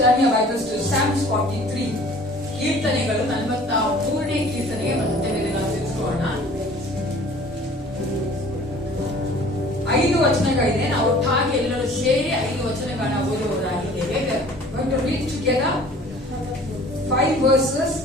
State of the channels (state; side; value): normal; both; correlation 0.49